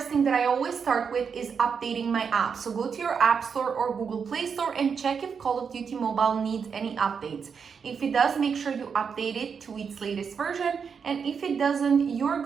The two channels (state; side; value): quieter; left; 6.3 dB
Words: thing that I always start with is updating my app. So go to your App Store or Google Play Store and check if Call of Duty Mobile needs any updates. If it does, make sure you update it to its latest version. And if it doesn't, you're